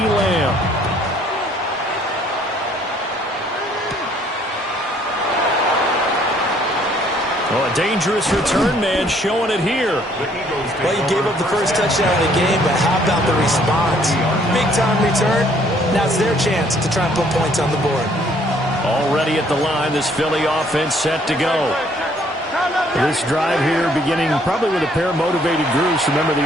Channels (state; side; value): normal; both; correlation 0.63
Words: Lamb. Well, a dangerous return man showing it here. Well, you gave up the first touchdown of the game, but how about the response? Big-time return. Now it's their chance to try and put points on the board. Already at the line, this Philly offense set to go. This drive here beginning probably with a pair of motivated groups. Remember, the